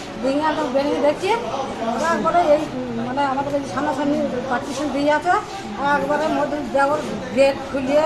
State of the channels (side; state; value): right; noise; hum, 27 dB below the sound